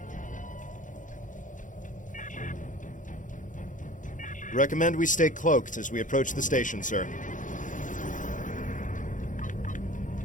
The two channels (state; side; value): late; right; 0.37 ms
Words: Recommend we stay cloaked as we approach the station, sir.